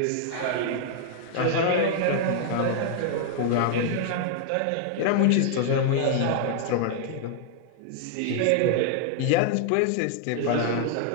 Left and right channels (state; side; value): different; both; correlation 0.00